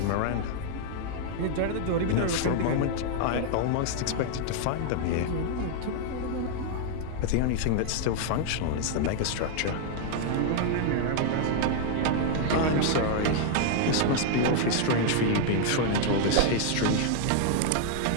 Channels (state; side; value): different; both; correlation 0.00